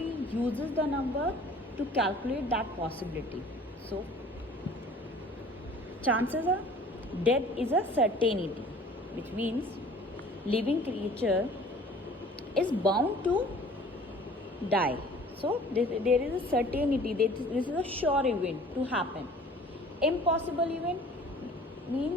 uses the number to calculate that possibility. So, chances are death is a certainty, which means living creature is bound to die. So there is a certainty that this is a sure event to happen. Impossible event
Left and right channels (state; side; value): normal; both; correlation 0.49